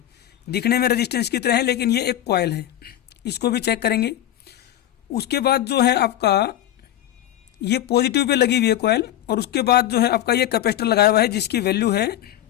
दिखने में रेजिस्टेंस की तरह है लेकिन ये एक कॉइल है। इसको भी चेक करेंगे। उसके बाद जो है आपका ये पॉजिटिव पे लगी हुई है कॉइल, और उसके बाद जो है आपका ये कैपेसिटर लगाया हुआ है जिसकी वैल्यू है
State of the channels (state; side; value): quieter; right; 12.5 dB